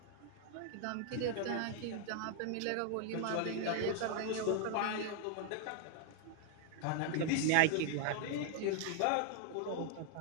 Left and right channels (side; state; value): both; different; correlation 0.01